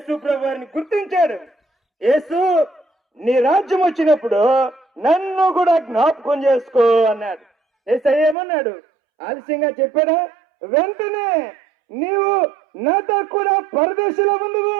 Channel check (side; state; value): left; drops out; at 8.3 s